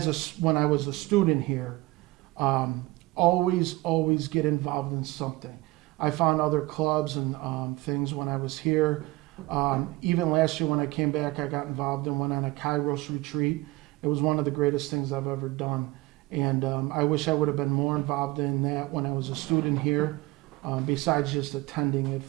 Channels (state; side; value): quieter; left; 20.5 dB